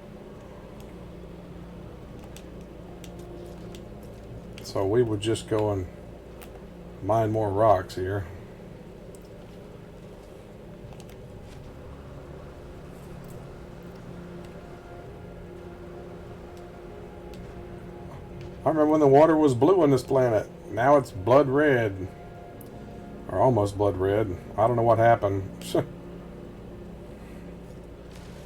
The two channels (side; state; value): both; identical; correlation 1.00